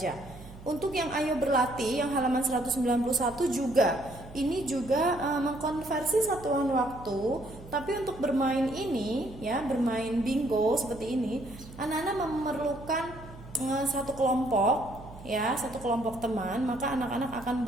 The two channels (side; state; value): right; noise; hum, 17 dB below the sound